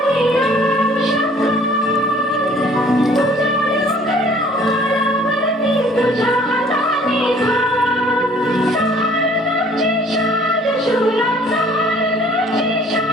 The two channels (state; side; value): normal; both; correlation 0.55